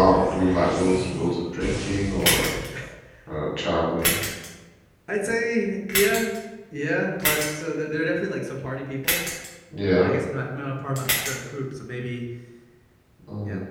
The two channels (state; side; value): identical; both; correlation 1.00